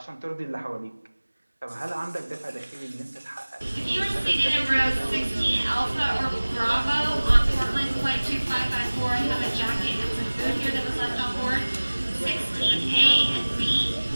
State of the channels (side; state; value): both; inverted; correlation -1.00